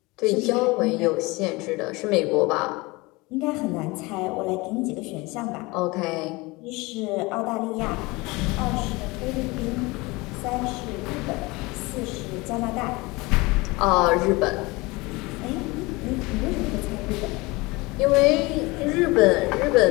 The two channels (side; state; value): right; quieter; 23.6 dB